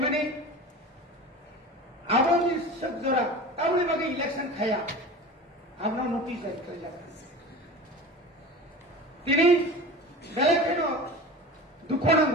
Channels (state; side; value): normal; both; correlation 0.34